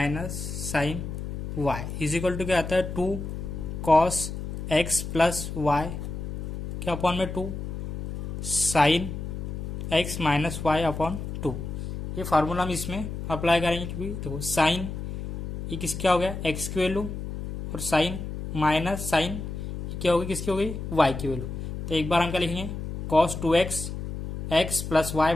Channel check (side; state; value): left; noise; hum, 6 dB below the sound